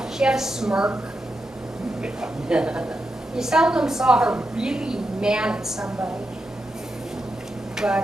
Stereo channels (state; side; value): normal; both; correlation 0.87